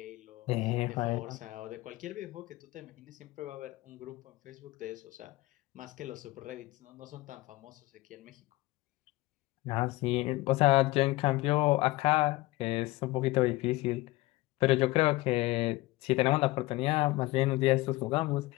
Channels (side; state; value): right; quieter; 19.9 dB